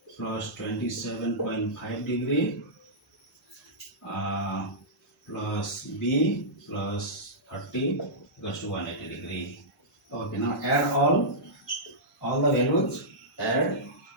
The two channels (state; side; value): normal; both; correlation -0.13